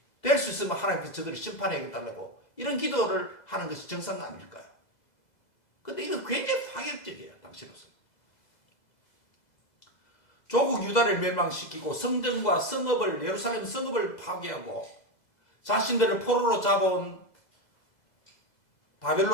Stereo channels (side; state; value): right; late; 2.0 ms